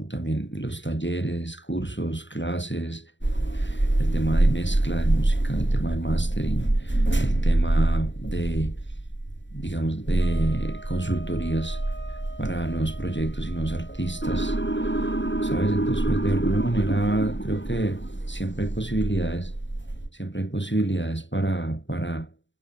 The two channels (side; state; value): right; late; 0.54 ms